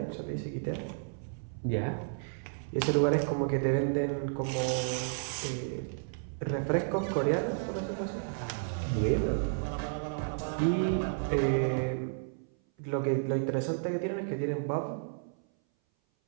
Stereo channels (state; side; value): silent; left; 56 dB below the other